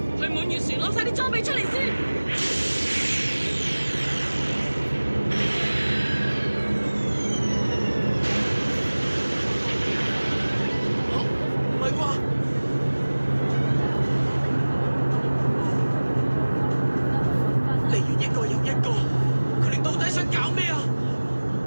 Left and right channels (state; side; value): inverted; both; correlation -1.00